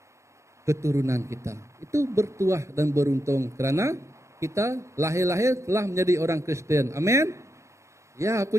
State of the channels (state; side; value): late; left; 0.14 ms